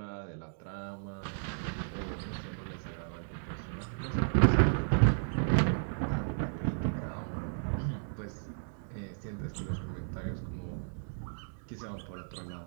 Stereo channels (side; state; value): left; silent; digital silence